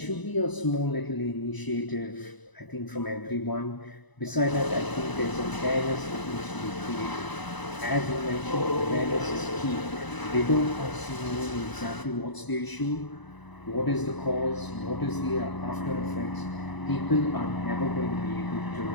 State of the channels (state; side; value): late; right; 1.0 ms